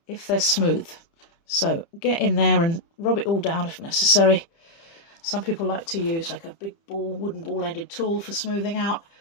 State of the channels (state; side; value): late; right; 30 ms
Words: if they're smooth. So get in there and rub it all down if necessary. Some people like to use like a big ball, wooden ball-ended tool for smoothing out.